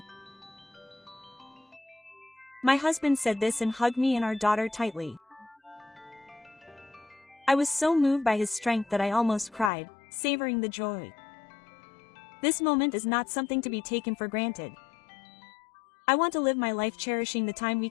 My husband said this and hugged me and our daughter tightly. I was so moved by his strength that I almost cried, savoring the joy. This moment is not something to be taken for granted. I want to live my life cherishing the time we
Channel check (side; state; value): right; drops out; at 9.7 s